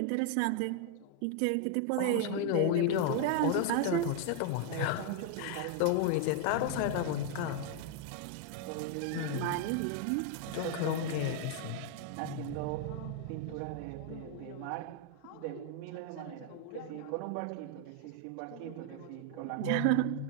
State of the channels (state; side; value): different; both; correlation 0.00